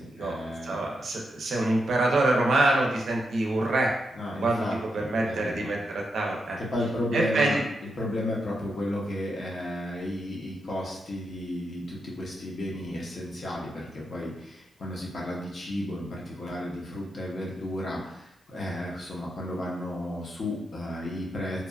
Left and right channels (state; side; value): normal; both; correlation 0.84